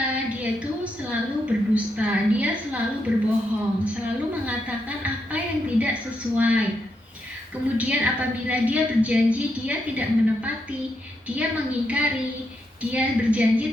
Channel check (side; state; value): both; normal; correlation 0.82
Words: dia itu selalu berdusta, dia selalu berbohong, selalu mengatakan apa yang tidak sesuai. Kemudian apabila dia berjanji, dia tidak menepati, dia mengingkari, dia berjanji